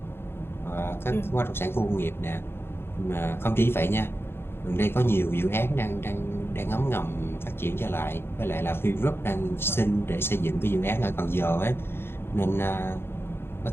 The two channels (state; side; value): late; right; 0.11 ms